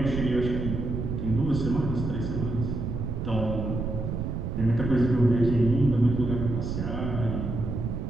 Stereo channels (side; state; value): right; noise; rumble, 3 dB below the sound